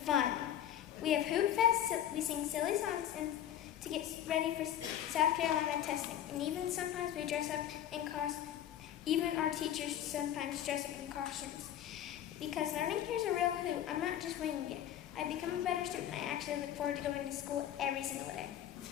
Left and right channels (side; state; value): right; quieter; 11.0 dB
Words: fun. We have Hoot Fest, we sing silly songs and to get ready for South Carolina testing. And even sometimes we dress up in costumes. Even our teachers sometimes dress up in costumes. Because learning here is a real hoot. I'm not just winging it. I become a better student. I actually look forward to going to school every single day.